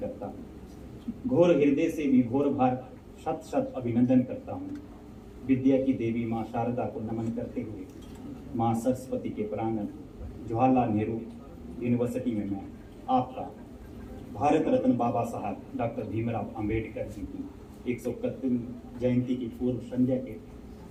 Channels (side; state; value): both; identical; correlation 1.00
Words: हूँ। घोर हृदय से विभोर भार शत शत अभिनंदन करता हूँ। विद्या की देवी माँ शारदा को नमन करते हुए माँ सरस्वती के प्रांगण जवाहरलाल नेहरू यूनिवर्सिटी में मैं आपका भारत रत्न बाबा साहब डॉक्टर भीमराव अंबेडकर जी की 131वीं जयंती की पूर्व संध्या के